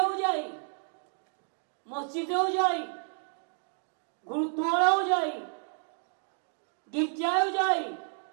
যাই, মসজিদেও যাই, গুরুদ্বারাও যাই, গির্জায়ও যাই,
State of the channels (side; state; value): left; silent; 56 dB below the other